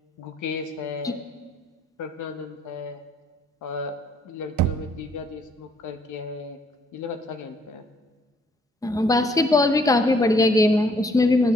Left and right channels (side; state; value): both; normal; correlation 0.65